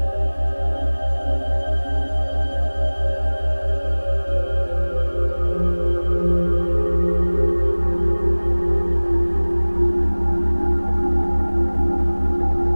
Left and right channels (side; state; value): both; inverted; correlation -1.00